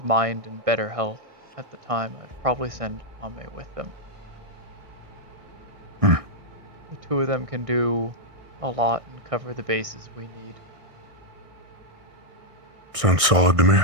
mind and better health at the time, I'd probably send Ame with them. The two of them can do a lot and cover the bases we need. Sounds solid to me.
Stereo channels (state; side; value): late; left; 1.6 ms